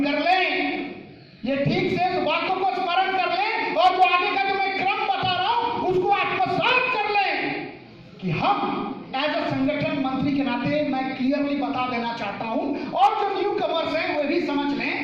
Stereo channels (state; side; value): identical; both; correlation 1.00